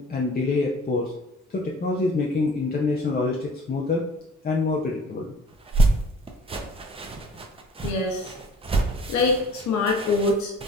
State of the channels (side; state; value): both; normal; correlation 0.49